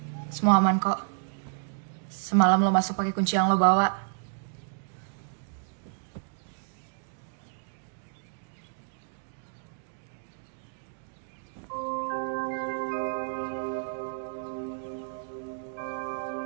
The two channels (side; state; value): left; silent; digital silence